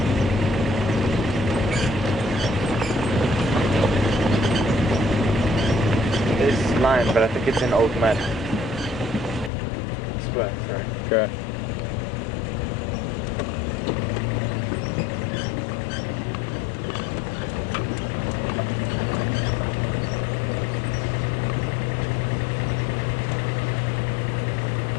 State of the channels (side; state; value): right; drops out; at 9.5 s